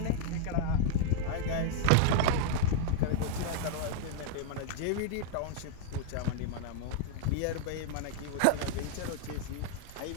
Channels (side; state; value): both; different; correlation 0.00